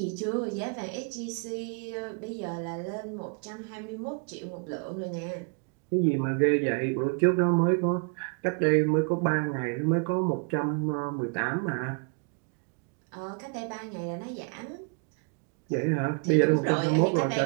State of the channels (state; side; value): quieter; left; 37.1 dB